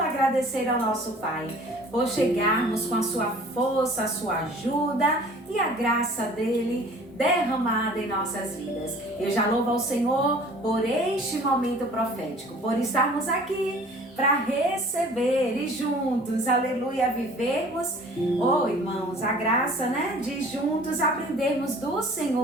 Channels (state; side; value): normal; both; correlation 0.48